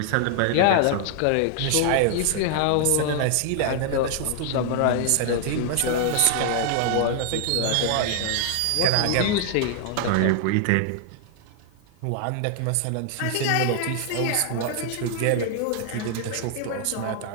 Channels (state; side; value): different; both; correlation 0.00